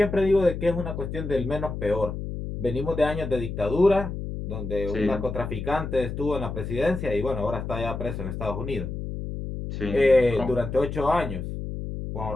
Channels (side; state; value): left; noise; hum, 6 dB below the sound